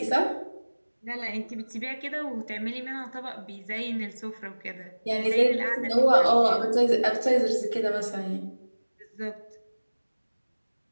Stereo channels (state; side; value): inverted; both; correlation -1.00